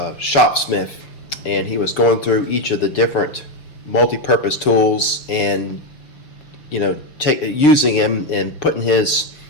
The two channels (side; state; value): right; late; 6.6 ms